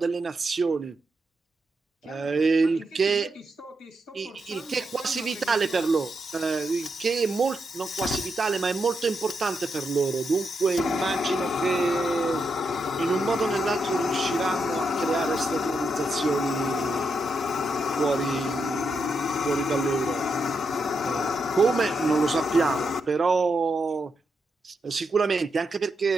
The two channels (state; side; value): normal; both; correlation 0.83